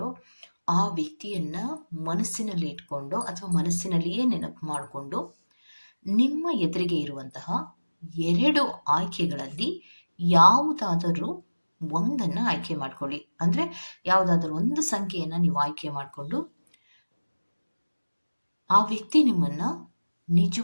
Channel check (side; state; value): both; inverted; correlation -1.00